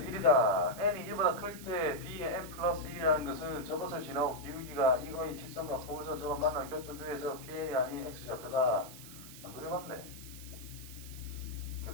1이다. n이 1보다 클 때 b의 n 플러스 1이라는 것은 저것을 지나고 기울기가 이거의 직선과 포물선 저것 만난 교점 중에서 pn이 아닌 x좌표다. 안 그려봤네.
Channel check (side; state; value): right; noise; hiss, 15 dB below the sound